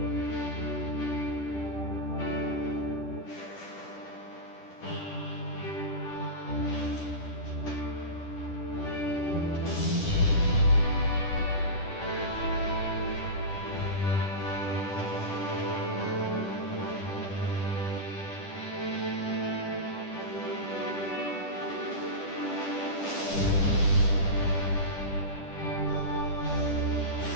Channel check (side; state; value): right; late; 10 ms